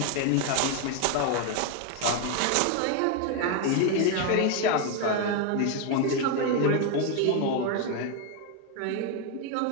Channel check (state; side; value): different; both; correlation 0.01